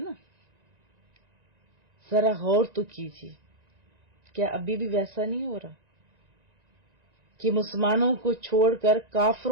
ذرا غور تو کیجیے، کیا ابھی بھی ویسا نہیں ہو رہا کہ مسلمانوں کو چھوڑ کر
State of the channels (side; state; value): left; late; 1.9 ms